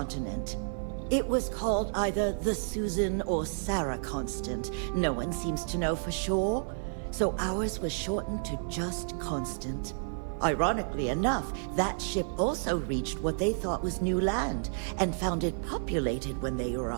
It was called either the Susan or Sarah Constant. No one seems to know for sure, so ours was shortened to just Constant. Ironically enough, that ship also reached what they thought was new land, and found it populated when they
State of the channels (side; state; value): left; silent; digital silence